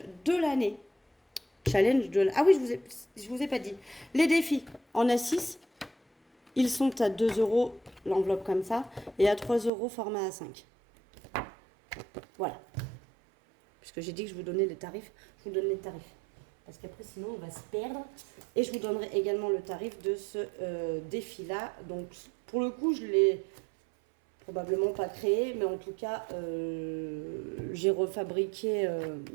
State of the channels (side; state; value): left; drops out; at 9.7 s